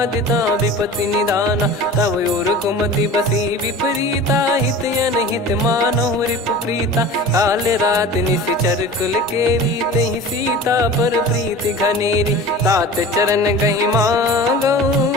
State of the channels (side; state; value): both; normal; correlation 0.37